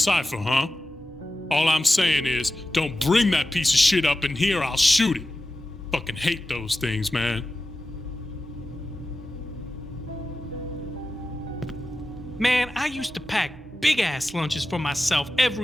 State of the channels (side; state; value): both; normal; correlation 0.93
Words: huh? All I'm saying is, don't bring that piece of shit up in here, I'll shoot it. Fucking hate those things, man. Man, I used to pack big-ass lunches for myself